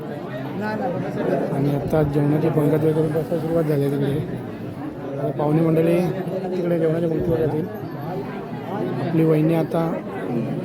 आणि आता जेवणाची पंगत वगैरे बसायला सुरुवात झाली आहे. तिकडे पाहुणे मंडळी तिकडे जेवणाच्या पंक्तीवर येतील. आपली वहिनी आता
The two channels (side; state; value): both; identical; correlation 1.00